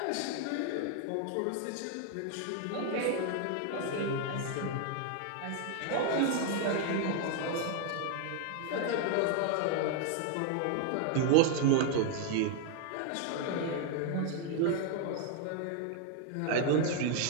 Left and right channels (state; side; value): different; both; correlation 0.00